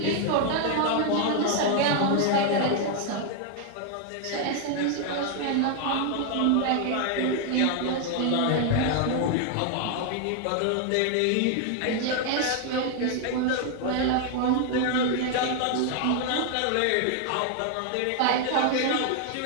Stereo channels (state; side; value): different; both; correlation 0.00